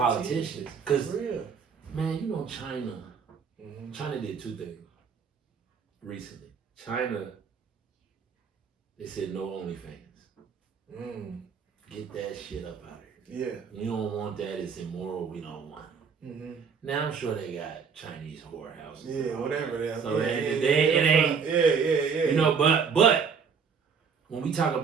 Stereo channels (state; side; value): quieter; left; 6.2 dB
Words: Cause man, China did two things recently. China, they said no OnlyFans. Get that shit up out of here. Yeah. We don't want that. It's immoral. We don't want it. Now I'm sure they got Chinese whorehouses. Yeah, whatever they are. So it ain't. Yeah. But when we talk